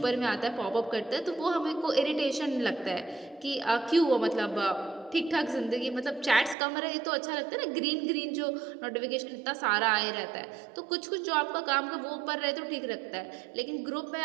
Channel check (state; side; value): drops out; left; at 6.6 s